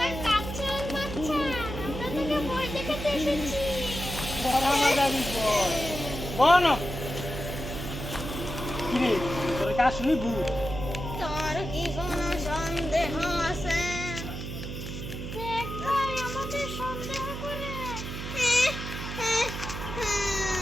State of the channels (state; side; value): noise; right; hum, 7 dB below the sound